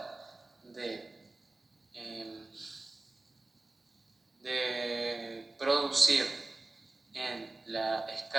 de producir en la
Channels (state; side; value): quieter; left; 3.1 dB